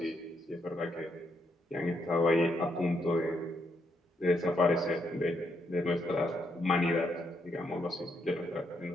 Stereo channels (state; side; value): normal; both; correlation 0.77